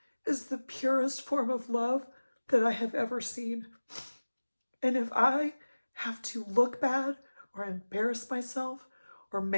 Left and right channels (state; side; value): inverted; both; correlation -1.00